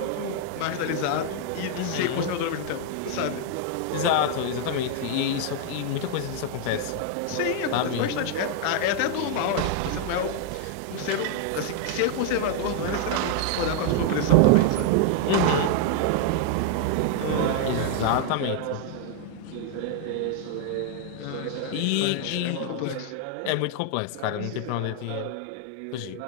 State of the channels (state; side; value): different; both; correlation 0.00